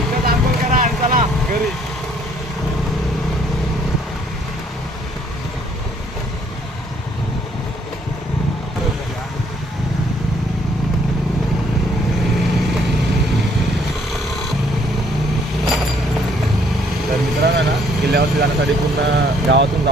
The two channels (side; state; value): both; normal; correlation 0.64